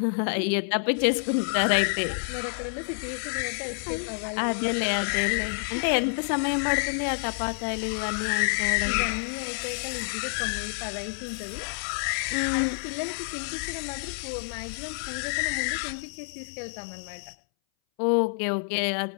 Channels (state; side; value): silent; right; 59 dB below the other